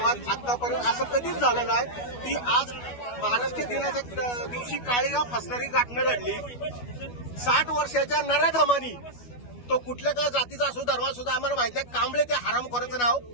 आतापर्यंत असं कधीच झालं नाही की आज महाराष्ट्र दिनाच्या दिवशी काळीगाव फसणारी घटना घडली. 60 वर्षाच्या नराधमानी, तो कुठल्या का जातीचा असो धर्माचा सुद्धा आम्हाला माहित नाही, कांबळे ते हरामखोराचं नाव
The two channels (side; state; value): right; late; 12 ms